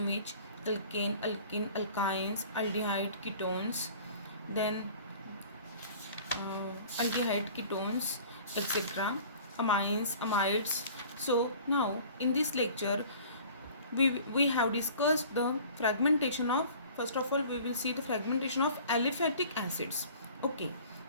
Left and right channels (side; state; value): both; inverted; correlation -0.47